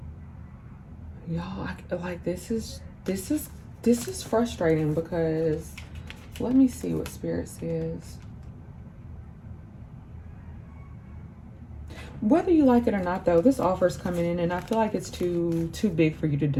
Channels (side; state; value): both; identical; correlation 1.00